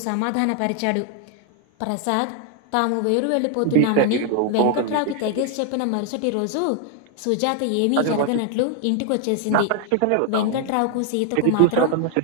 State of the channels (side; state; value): both; different; correlation 0.00